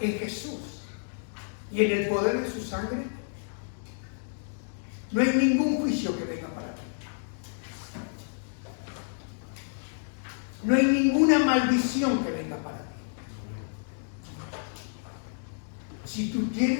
en Jesús y en el poder de su sangre, no hay ningún juicio que venga para ti. No hay ninguna maldición que venga para ti. Si tú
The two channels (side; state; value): right; silent; digital silence